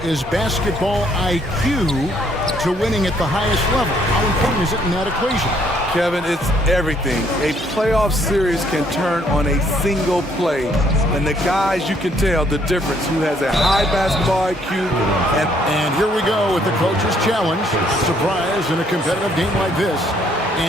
basketball IQ to winning at the highest level? How important is it in that equation? Kevin, it's everything. A playoff series can turn on a single play. And the guys, you can tell the difference. Who has a high basketball IQ. And here we go with the coach's challenge. Surprise in a competitive game like this.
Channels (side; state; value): both; normal; correlation 0.67